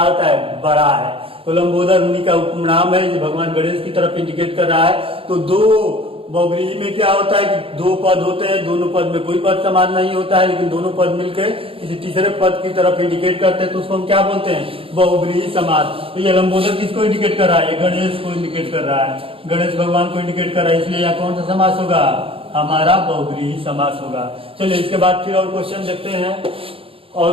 होता है? बड़ा है। तो लंबोदर उन्हीं का उपनाम है जो भगवान गणेश की तरफ इंडिकेट कर रहा है। तो दो बहुव्रीहि में क्या होता है कि दो पद होते हैं, दोनों पद में कोई पद समान नहीं होता है, लेकिन दोनों पद मिलकर किसी तीसरे पद की तरफ इंडिकेट करते हैं, तो उसको हम क्या बोलते हैं? बहुव्रीहि समास। तो ये लंबोदर किसको इंडिकेट कर रहा है? गणेश को इंडिकेट कर रहा है, गणेश भगवान को इंडिकेट कर रहा है, इसलिए यहाँ कौन सा समास होगा? हमारा बहुव्रीहि समास होगा। चलिए इसके बाद फिर और क्वेश्चन देखते हैं, और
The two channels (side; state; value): left; late; 0.27 ms